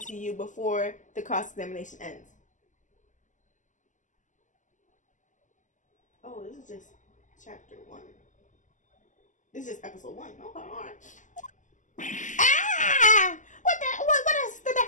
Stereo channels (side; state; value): right; late; 0.37 ms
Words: to you before the cross-examination ends. Oh, this is just chapter 1. This is just episode 1. Okay, alright. Ah! What is the